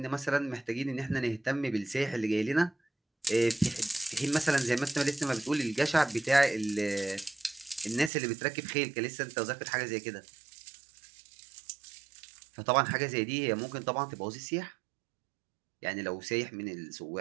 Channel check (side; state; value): left; drops out; at 8.1 s